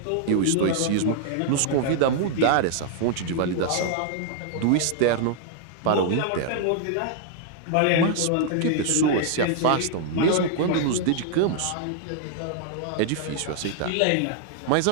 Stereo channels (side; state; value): both; different; correlation -0.01